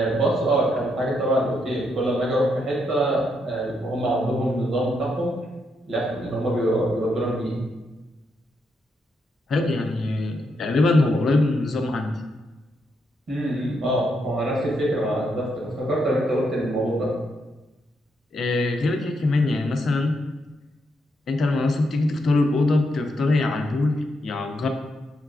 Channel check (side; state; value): both; normal; correlation 0.79